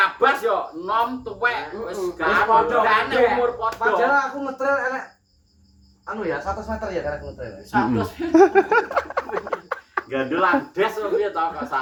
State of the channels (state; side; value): identical; both; correlation 1.00